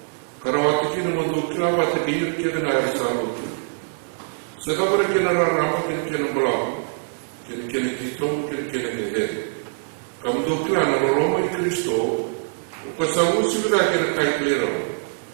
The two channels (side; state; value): left; silent; 63 dB below the other